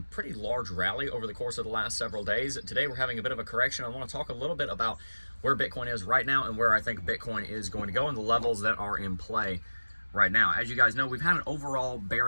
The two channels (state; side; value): inverted; both; correlation -1.00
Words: large rally over the course of the last several days. Today we're having a bit of a correction. I want to talk a little bit about where Bitcoin is right now and where I think Bitcoin is going to go and the levels that are in play right now. As you guys know, we've had an overall